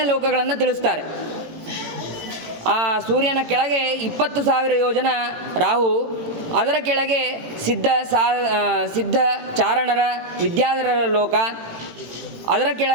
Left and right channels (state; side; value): late; left; 18 ms